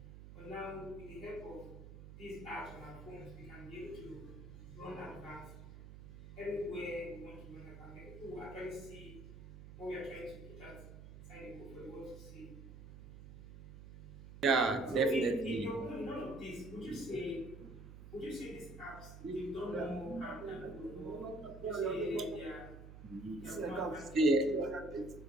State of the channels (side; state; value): right; noise; hum, 14 dB below the sound